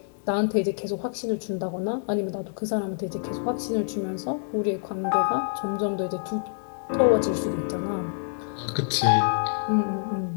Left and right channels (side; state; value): right; silent; digital silence